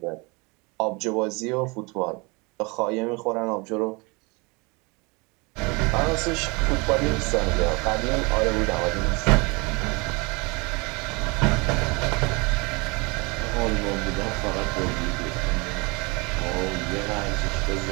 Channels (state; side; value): quieter; left; 28.1 dB